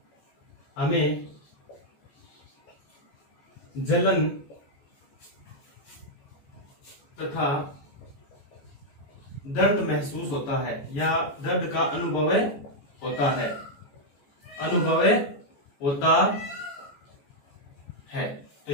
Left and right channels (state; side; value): late; right; 14 ms